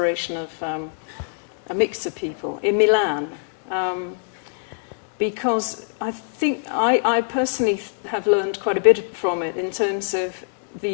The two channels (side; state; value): right; silent; digital silence